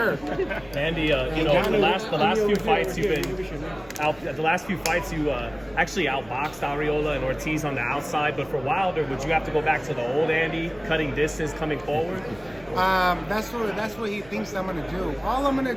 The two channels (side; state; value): right; noise; rumble, 23 dB below the sound